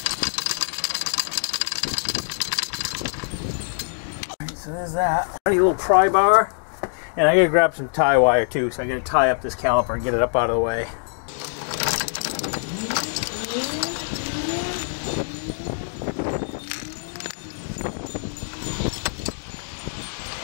So there's that. A little pry bar. And I gotta grab some tie wire too, so I gotta tie up this caliper and get it up out of the way.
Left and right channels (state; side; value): silent; right; 62 dB below the other